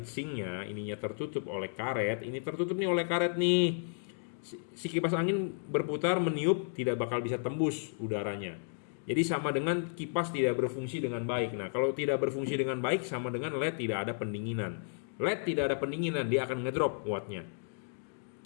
ininya tertutup oleh karet, ini tertutup nih oleh karet nih, si kipas angin berputar meniup tidak bakal bisa tembus udaranya. Jadi sama dengan kipas tidak berfungsi dengan baik. Nah, kalau tidak berfungsi dengan baik sama dengan LED tidak ada pendinginan. LED tidak ada pendinginan, dia akan ngedrop wattnya.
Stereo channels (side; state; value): right; silent; digital silence